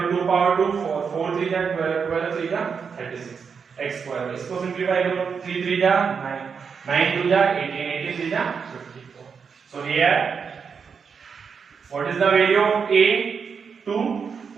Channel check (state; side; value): quieter; left; 6.1 dB